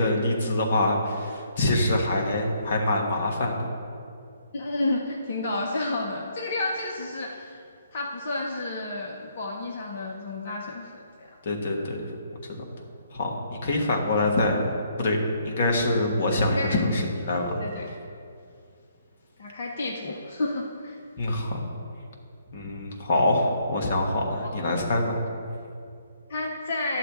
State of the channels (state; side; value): inverted; both; correlation -0.69